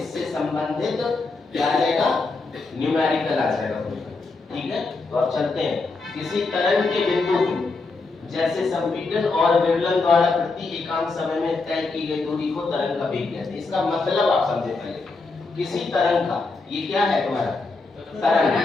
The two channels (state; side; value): quieter; right; 3.8 dB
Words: संबंधित क्या आ जाएगा, न्यूमेरिकल आ जाएगा। ठीक है, तो अब चलते हैं। किसी तरंग के बिंदु की जैसे संपीड़न और विवलन द्वारा प्रति एकांक समय में तय की गई दूरी को तरंग का वेग कहते हैं। इसका मतलब आप समझे पहले। किसी तरंग का, ये क्या है तुम्हारा